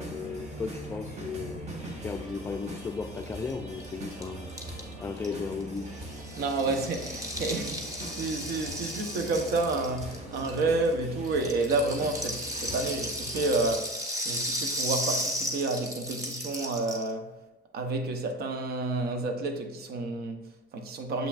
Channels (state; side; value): normal; both; correlation 0.33